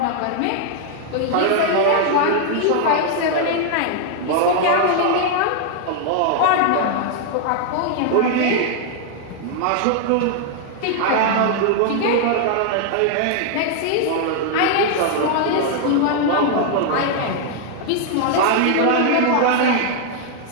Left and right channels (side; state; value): both; different; correlation 0.00